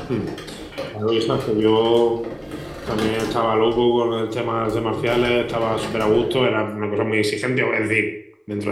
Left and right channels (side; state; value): both; identical; correlation 1.00